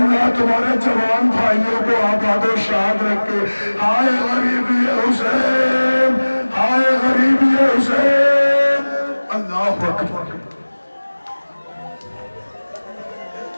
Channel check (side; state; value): both; inverted; correlation -1.00